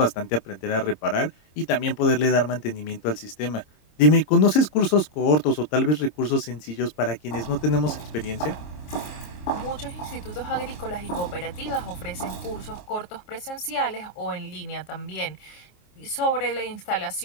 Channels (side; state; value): right; late; 26 ms